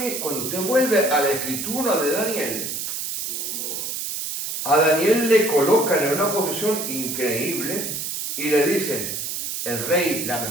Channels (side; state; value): right; noise; hiss, 4 dB below the sound